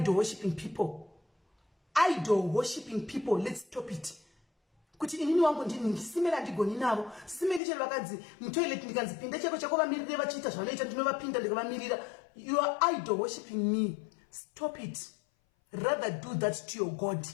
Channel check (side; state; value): right; drops out; at 7.6 s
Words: worshipping people. Idol worshipping people, let's stop it. Kuti inini wangu ndini ndisimela ndigoni navo. Simeli chero vakadzi mutoilet ndikanzipinda cheko chako vamirire vachiita zvanoita ndinovapinda ndikavamirira. You are idol worshipping me. Stop it. Rather do that to your God.